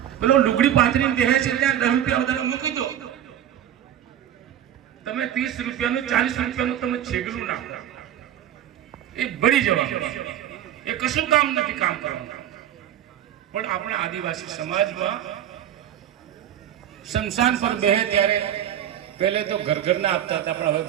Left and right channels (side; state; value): left; quieter; 10.8 dB